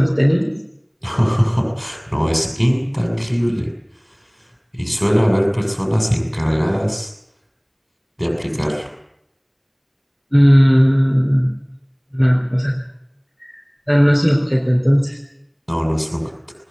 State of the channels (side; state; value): both; identical; correlation 1.00